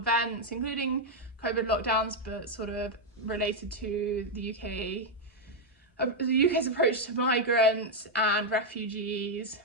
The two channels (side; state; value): both; normal; correlation 0.01